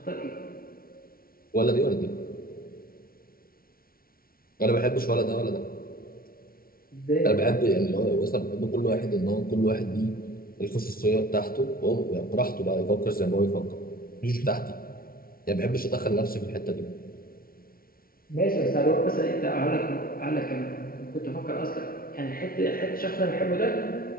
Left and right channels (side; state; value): right; late; 0.43 ms